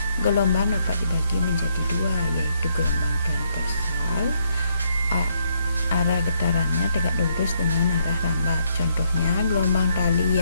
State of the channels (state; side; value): inverted; both; correlation -0.73